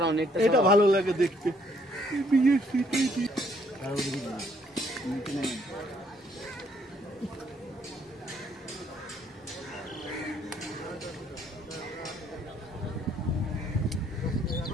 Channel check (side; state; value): both; normal; correlation 0.66